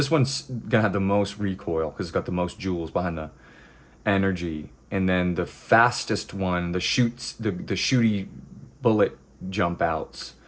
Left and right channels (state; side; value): identical; both; correlation 1.00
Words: one's gonna have the most recoil because it's got the most jewels behind the energy. And then the fastest one, the shooty bullet jump outs.